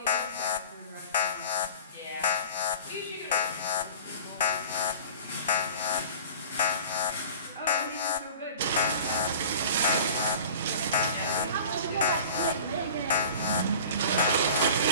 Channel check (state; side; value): inverted; both; correlation -0.41